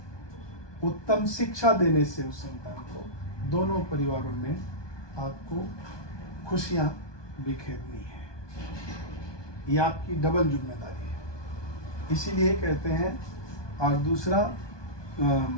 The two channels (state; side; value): late; right; 1.2 ms